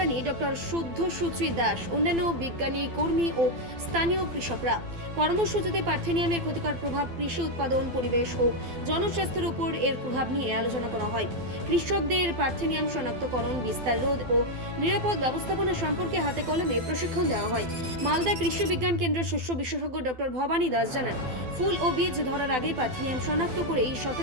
ডক্টর শুদ্ধ সুচি দাস, অন্যান্য বিজ্ঞানী কর্মী ও স্থানীয় কৃষকরা। কর্মসূচিতে পার্থেনিয়ামের ক্ষতিকর প্রভাব, কৃষি উৎপাদন, পরিবেশ ও জনস্বাস্থ্যের উপর এর প্রভাব নিয়ে আলোচনা করা হয়। কৃষকদের পার্থেনিয়াম শনাক্তকরণ, বিস্তার রোধ ও নিরাপদ ব্যবস্থাপনা সম্পর্কে হাতে কলমে প্রশিক্ষণ দেওয়া হয়। মালদা কৃষি বিজ্ঞান কেন্দ্রের শস্য বিশেষজ্ঞ ডক্টর ভবানী দাস জানান, ফুল ও বীজ ধরার আগে পার্থেনিয়াম শনাক্ত করে এই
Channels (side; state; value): left; late; 12 ms